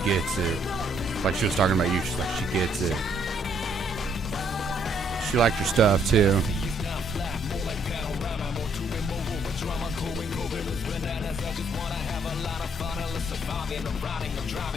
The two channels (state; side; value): normal; both; correlation 0.68